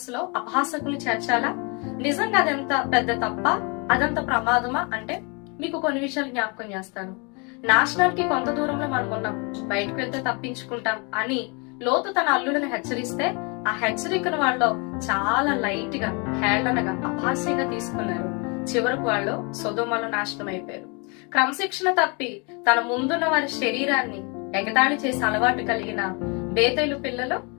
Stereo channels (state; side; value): quieter; right; 32.1 dB